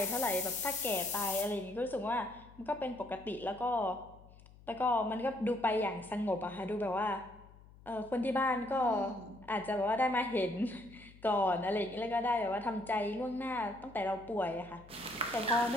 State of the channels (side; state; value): left; noise; hum, 22 dB below the sound